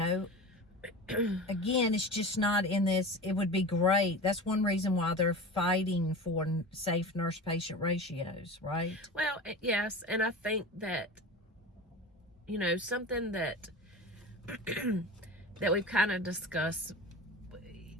again, it's just not in this. It would be great. That's one reason why they're fighting for safe nurse-patient ratios, right? Well, yes. And I think that, you know, something that that we've kind of discussed,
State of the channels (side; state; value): both; normal; correlation 0.32